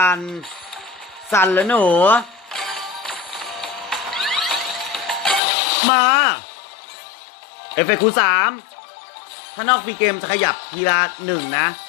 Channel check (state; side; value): drops out; right; at 5.4 s